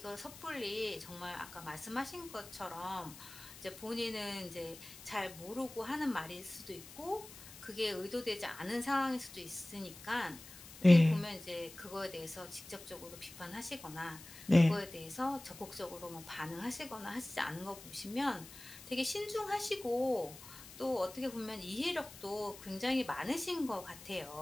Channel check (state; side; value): noise; left; hiss, 16 dB below the sound